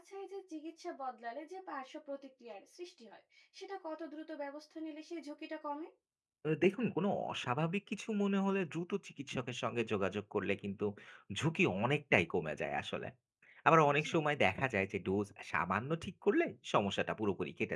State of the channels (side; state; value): both; identical; correlation 1.00